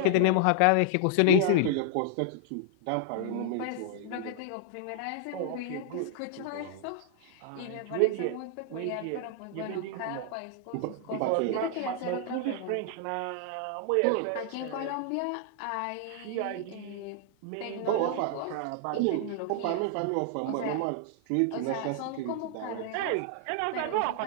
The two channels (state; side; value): different; both; correlation -0.01